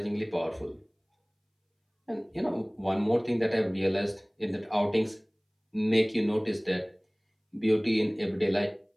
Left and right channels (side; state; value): both; identical; correlation 1.00